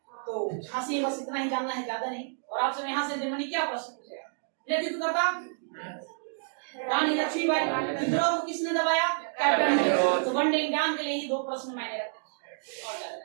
तो झांसी बस इतना ही जानना है, ज्यादा नहीं। और आपसे यहाँ से जर्मनी क्या प्रश्न पूछेगा? नेतृत्व करता रानी लक्ष्मीबाई। विद्रोह को किसने दबाया? कैप्टन। तो वन डे एग्जाम के लिए ही 2 प्रश्न मैंने रखे और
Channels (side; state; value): left; silent; digital silence